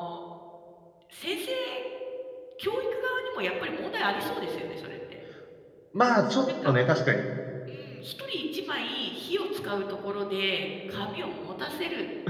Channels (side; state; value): both; identical; correlation 1.00